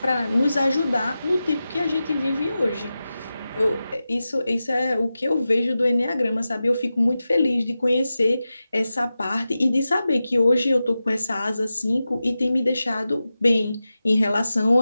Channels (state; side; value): inverted; both; correlation -0.93